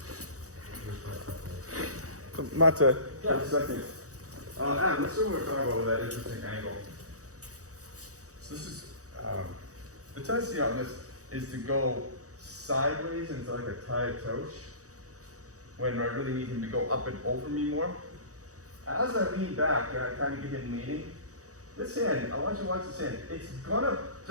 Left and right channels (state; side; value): late; left; 0.66 ms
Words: Mata, yeah, second. Adam, let's see what we're talking about with that interesting angle. So this is, the tendency on this is to go sideways into like a tie toche when I really need him to go up and over me more. As I lean back and I kind of get him leaning, this hand, I want you to watch this hand. It's gonna